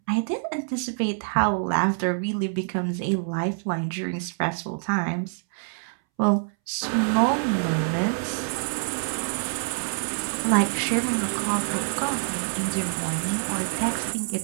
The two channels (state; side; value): silent; left; 61 dB below the other